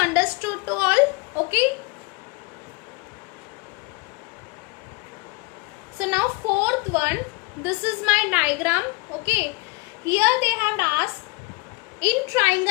to all. Okay. So now fourth one, this is my diagram. Okay, here they have asked in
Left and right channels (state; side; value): quieter; right; 26.0 dB